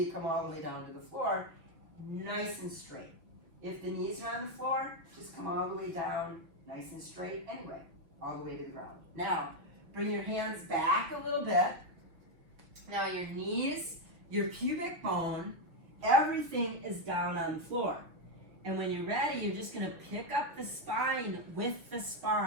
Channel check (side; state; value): left; late; 6.0 ms